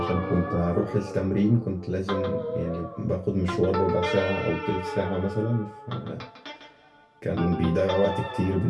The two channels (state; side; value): identical; both; correlation 1.00